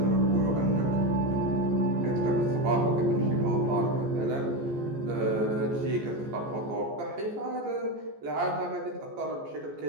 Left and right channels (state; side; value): late; left; 14 ms